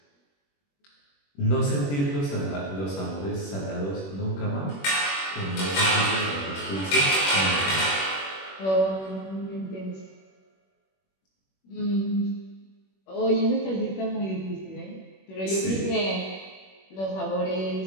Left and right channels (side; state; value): right; late; 21 ms